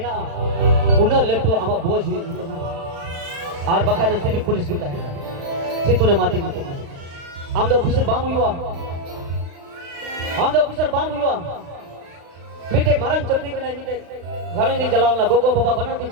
उन्हें लेटो आमा बोझ हुई और बकायदा से भी पुलिस की है सितोरे माती माती हम दो ऑफिसर बाम हुआ मीटे मरन चक्री के नहीं मीटे घरों नहीं जलावना गोगो बाबा बना तीन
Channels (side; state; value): left; late; 36 ms